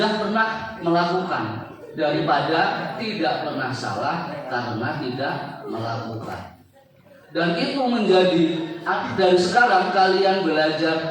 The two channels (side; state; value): both; identical; correlation 1.00